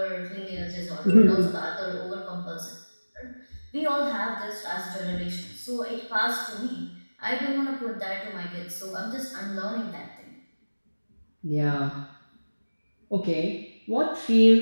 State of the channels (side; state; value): both; inverted; correlation -1.00